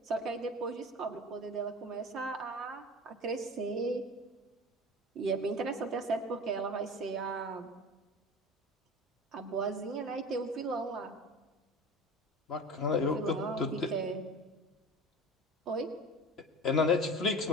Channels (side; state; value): both; normal; correlation 0.35